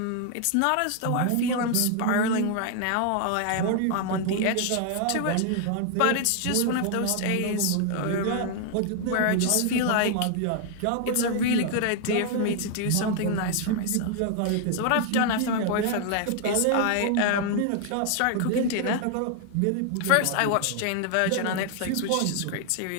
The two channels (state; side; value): different; both; correlation 0.00